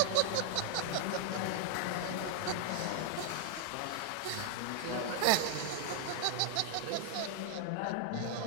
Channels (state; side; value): different; both; correlation 0.00